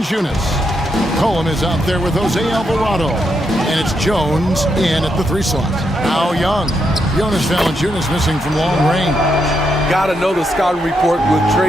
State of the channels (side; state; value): both; normal; correlation 0.81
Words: Cohen is out there with Jose Alvarado. And it's Jones in at the 3 slot. Now Young. Jonas Valanciunas missing from long range. Got to know the scouting report with